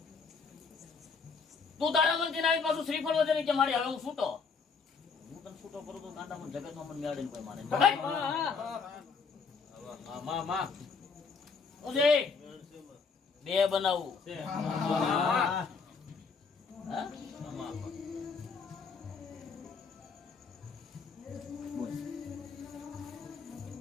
તું તારા મનથી આવી પાછું શ્રીફળ વધે કે મારી હવે હું છૂટો. હું તને છૂટો કરું તો કાંટામાં જગતમાં મને મેળડીને કોઈ માને નહીં. ઉજે બે બનાવું હા?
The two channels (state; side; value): quieter; right; 5.2 dB